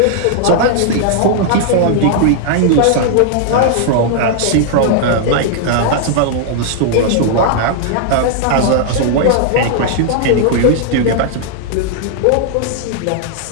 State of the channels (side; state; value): both; different; correlation -0.01